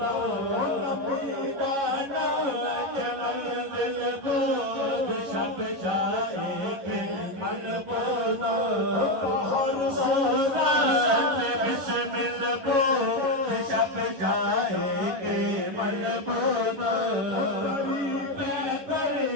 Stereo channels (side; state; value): left; late; 11 ms